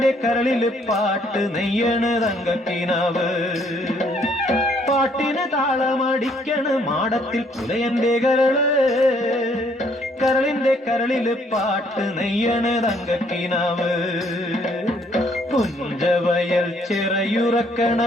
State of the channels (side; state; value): both; normal; correlation 0.66